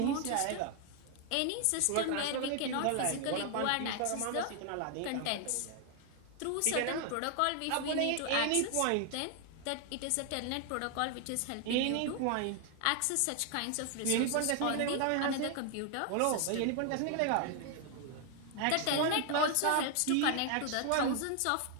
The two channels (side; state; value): both; different; correlation 0.00